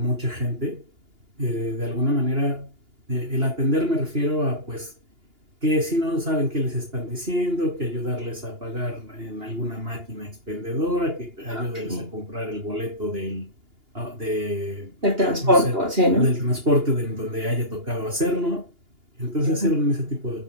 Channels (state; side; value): late; left; 2.8 ms